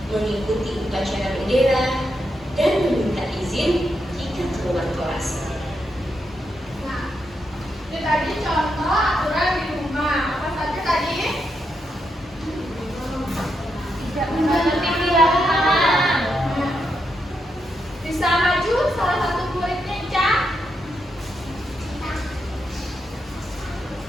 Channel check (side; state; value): both; normal; correlation 0.83